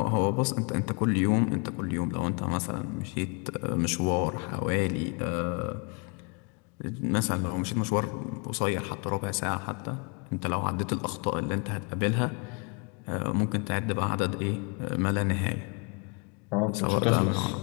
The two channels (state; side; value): quieter; right; 33.6 dB